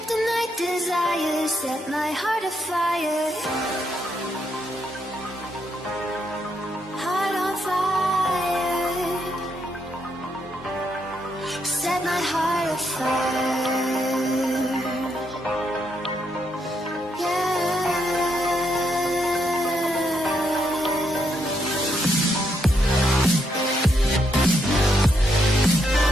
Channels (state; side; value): normal; both; correlation 0.77